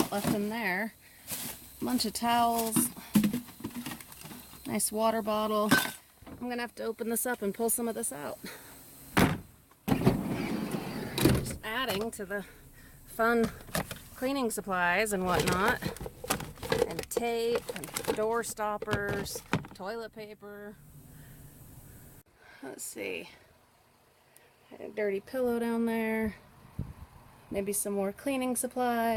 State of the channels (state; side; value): identical; both; correlation 1.00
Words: left in there. A bunch of towels. Nice water bottle. I'm gonna have to open this up and pull some of this out. Just adding to the fun cleaning supplies and whatnot. And tape, and door stoppers, toilet paper. Let's see. A dirty pillow down there. Maybe some more cleaning